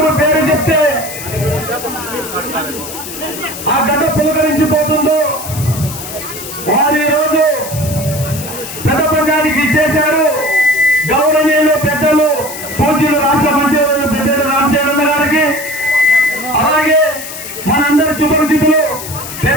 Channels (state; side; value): noise; left; hiss, 10 dB below the sound